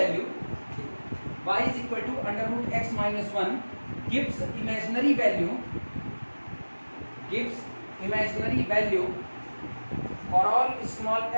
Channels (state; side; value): inverted; both; correlation -1.00